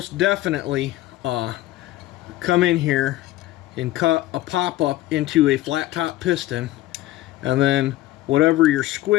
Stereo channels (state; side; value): quieter; right; 15.9 dB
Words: definitely come in here and cut a pop-up into a flat top piston, and then whatever your